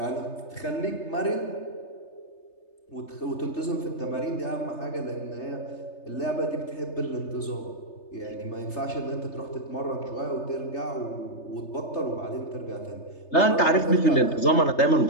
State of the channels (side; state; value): right; late; 3.3 ms